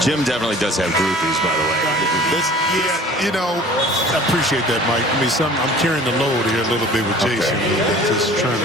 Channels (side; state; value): both; normal; correlation 0.46